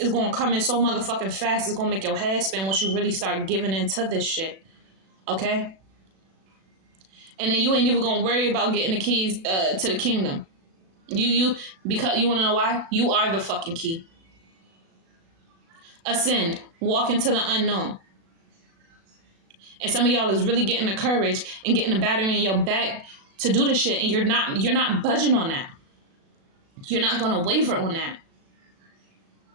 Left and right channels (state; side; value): late; left; 36 ms